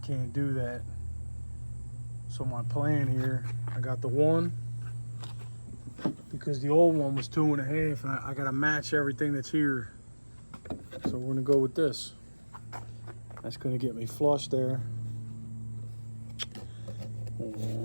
do that. So my plan here, I got the one, because the old one was 2.5, and I gotta match everything that's here. So we're gonna go with this. That's gonna get me flush there.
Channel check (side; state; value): both; inverted; correlation -1.00